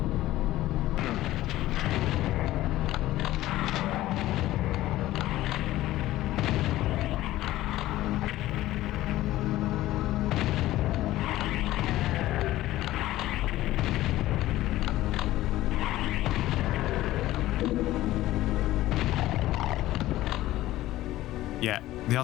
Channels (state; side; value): quieter; right; 15.6 dB